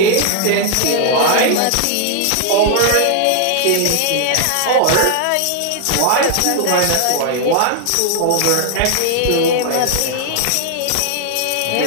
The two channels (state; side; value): different; both; correlation 0.00